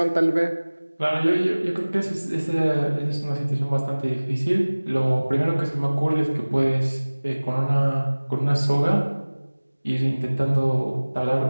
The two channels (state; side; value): inverted; both; correlation -1.00